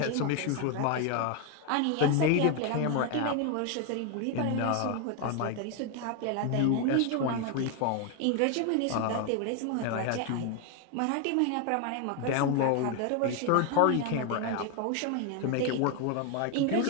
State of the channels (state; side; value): different; both; correlation 0.01